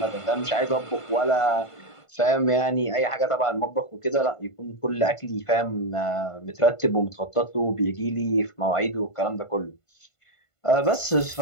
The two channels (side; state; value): right; late; 1.5 ms